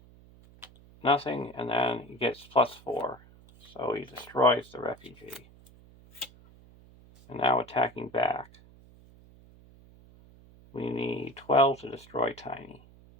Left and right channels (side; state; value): right; noise; hum, 24 dB below the sound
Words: nothing, and then he gets +4. So he destroys the refugee. And now attacking back. We need 12 to destroy Tiny.